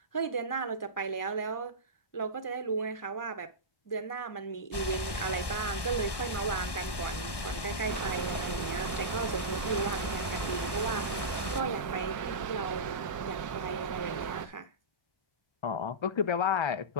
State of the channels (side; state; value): right; late; 1.1 ms